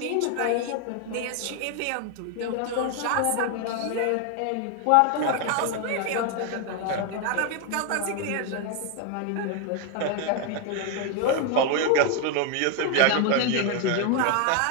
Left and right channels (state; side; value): different; both; correlation 0.01